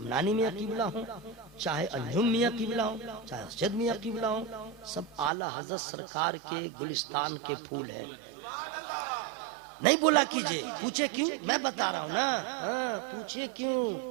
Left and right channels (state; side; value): drops out; left; at 5.3 s